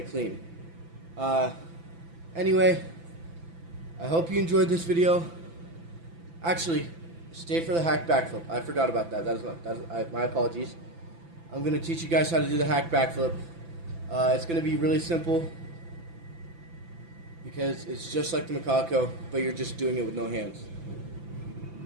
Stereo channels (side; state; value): left; late; 6.0 ms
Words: clean. Anyway, I hope you enjoyed this video. Actually, stay for the hack backflip. I forgot about that. My apologies. I'm going to teach you guys how to do the hack backflip. It's going to be really simple because it's just like the macaco, but you're just doing it with no hands.